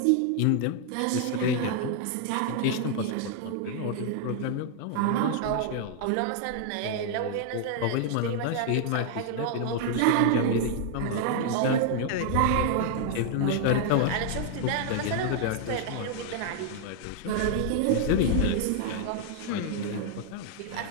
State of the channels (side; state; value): both; different; correlation 0.00